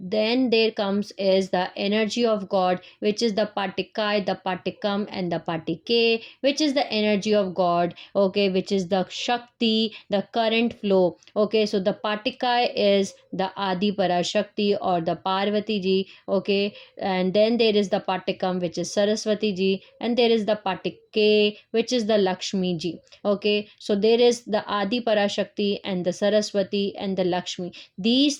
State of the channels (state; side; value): identical; both; correlation 1.00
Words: then there comes is the energy of God, which is the Patikai, the Patikam, and the Patike, which is the energy of God. Okay, which is the Shakti, the current flow. Okay, so the Patikai is the Adi Parashakti or the Parvati ji. Okay, and then there is the Patikam, which is Saraswati ji, and there is the Patike, which is the Lakshmi ji. Okay, so there is the Adi Parashakti and the Saraswati and the Lakshmi. These